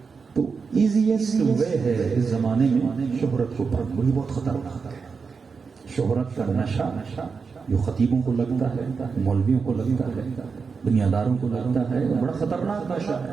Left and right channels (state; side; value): quieter; left; 5.2 dB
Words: تو ایزیسٹ وے ہے اس زمانے میں شہرت کو پانا. یہ بہت خطرناک ہے. شہرت کا نشہ جو خطیبوں کو لگتا ہے، مولویوں کو لگتا ہے، دنیاداروں کو لگتا ہے، بڑا خطرناک نشہ